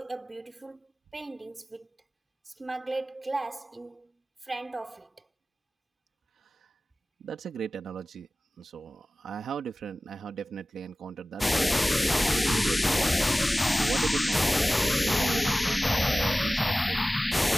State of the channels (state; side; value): normal; both; correlation 0.97